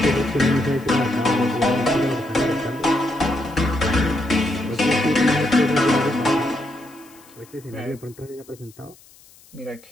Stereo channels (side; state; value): left; noise; hiss, 26 dB below the sound